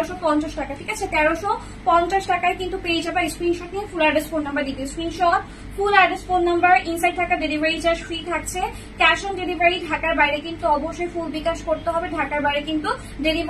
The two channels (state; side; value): identical; both; correlation 1.00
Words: টাকা, ঠিক আছে। 1350 টাকায় কিন্তু পেয়ে যাবে। স্ক্রিনশট নিয়ে ফুল অ্যাড্রেস ফোন নাম্বার দিতে, screenshot full address phone number, inside থাকা ডেলিভারি চার্জ ফ্রি থাকছে। ক্যাশ অন ডেলিভারি ঢাকার বাইরে কিন্তু অবশ্যই ফুল বিকাশ করতে হবে, ঢাকার বাইরে কিন্তু